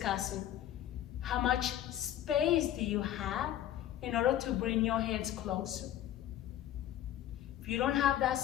How much space do you have in order to bring your hands closer? If you don't have that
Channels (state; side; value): quieter; right; 12.0 dB